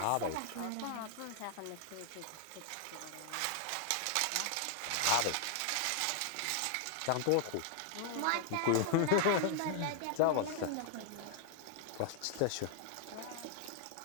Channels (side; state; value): both; different; correlation 0.00